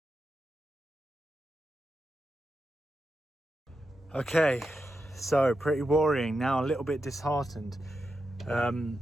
Okay, so pretty worrying now, a little bit disheartened. I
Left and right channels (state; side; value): normal; both; correlation 0.88